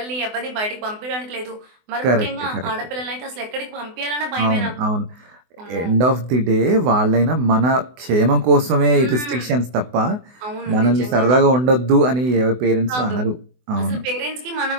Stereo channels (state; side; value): late; left; 24 ms